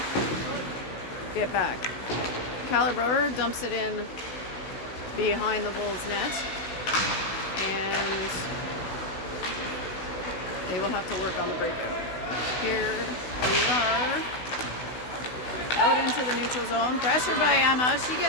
get back. Calibre dumps it in behind the Wolves net, and they will have to work on the breakout. Here we are, out into the neutral zone, pressured by Emma. She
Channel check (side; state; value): right; late; 16 ms